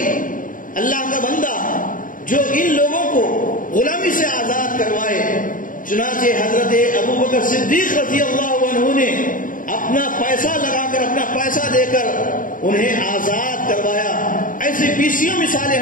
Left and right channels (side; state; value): right; late; 0.39 ms